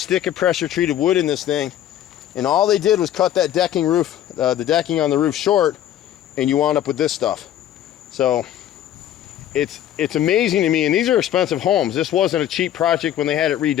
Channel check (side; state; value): right; quieter; 11.4 dB